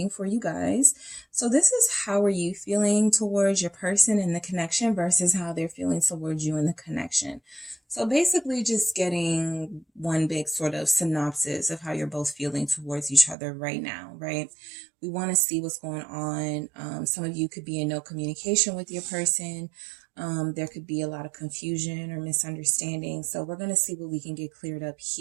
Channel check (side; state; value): left; drops out; at 13.4 s